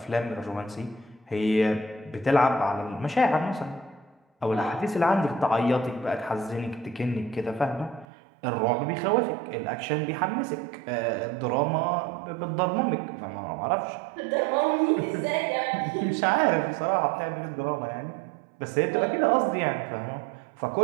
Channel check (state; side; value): drops out; left; at 8.1 s